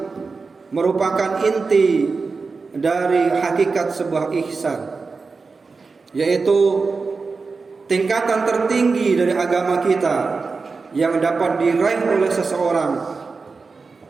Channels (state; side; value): quieter; left; 4.4 dB